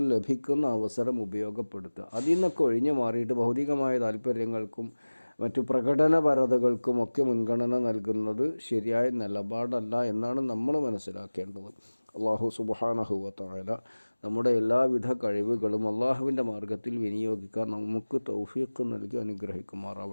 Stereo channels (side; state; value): both; inverted; correlation -1.00